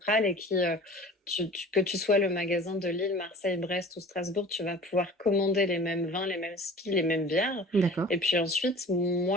et que tu sois le magasin de Lille, Marseille, Brest ou Strasbourg, tu vas pouvoir commander les mêmes vins, les mêmes skis, les mêmes bières. D'accord. Et puis ensuite,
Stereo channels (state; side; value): normal; both; correlation 0.43